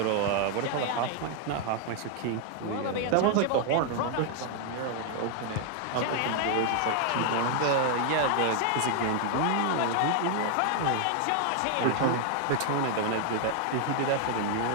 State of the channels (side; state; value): both; different; correlation 0.00